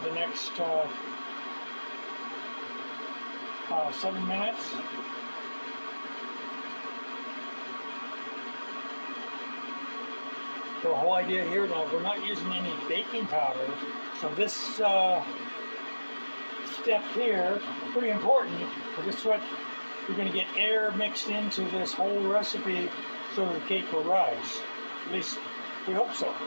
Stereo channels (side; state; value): both; inverted; correlation -1.00